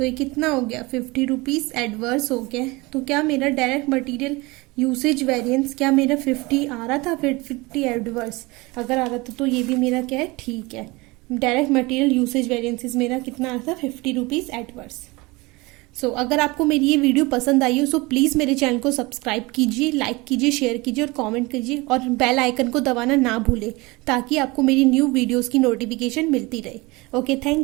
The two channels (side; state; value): left; quieter; 23.8 dB